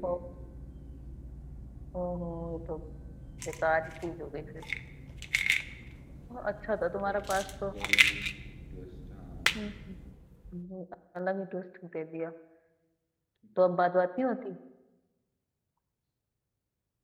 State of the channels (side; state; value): both; identical; correlation 1.00